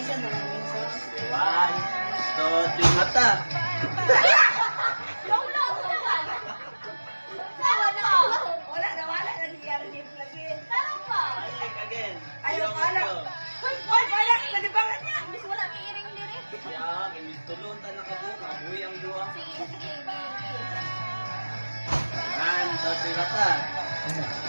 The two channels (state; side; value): inverted; both; correlation -1.00